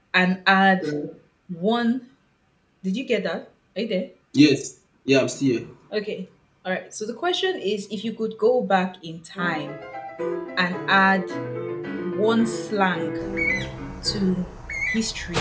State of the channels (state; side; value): identical; both; correlation 1.00